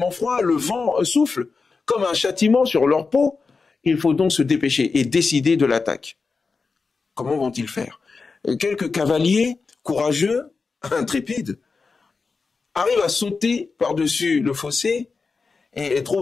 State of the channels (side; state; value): right; quieter; 4.5 dB